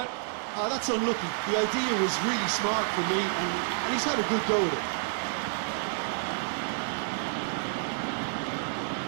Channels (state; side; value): silent; left; digital silence